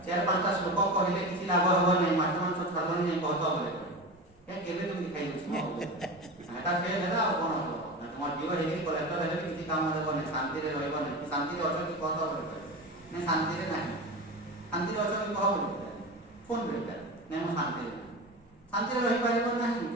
4-5ଟା ଶ୍ଲୋକ କହିଲେ କିଛି ଲାଭ ହେବ ନାହିଁ ମାଛ ମାଂସ ଛାଡ଼ିବନି ନାହିଁ କହତ ବୋଲେ କେବେ ତୁମେ ଖାଇଦେଉଛି ଏଇଟା ସେ ହେଲା ଆଉ କ'ଣ ହେବ ତୁମ ଝିଅ ହେଇକି କଲେକ୍ଟର ହେଲେ ବି କିଛି କାମ ଦେବନି ଶାନ୍ତିରେ ରହିବନି ଶାନ୍ତିରେ ଅଛ କି କହତ ବୋଲି କହିଲେ ନାଇଁ ଶାନ୍ତିରେ ନାହିଁ ଶାନ୍ତିରେ ଅଛ କି କହ ବୋଲି ଫୋନ୍ କରିବେ ନାଇଁ ମୁଁ ଶାନ୍ତିରେ ନାହିଁ ଶାନ୍ତିରେ ରହିପାରିବ ନାହିଁ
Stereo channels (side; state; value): both; normal; correlation 0.27